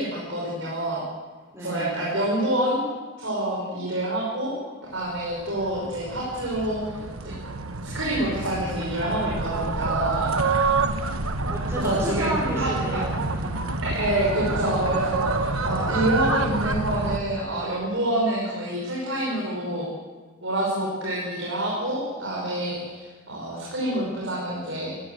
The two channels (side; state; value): both; normal; correlation 0.11